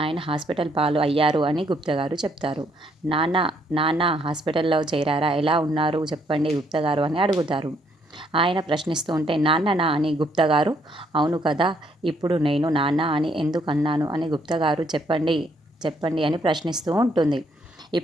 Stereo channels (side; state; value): both; normal; correlation 0.70